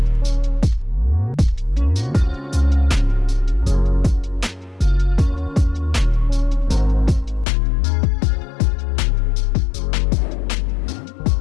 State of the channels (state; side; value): drops out; right; at 7.5 s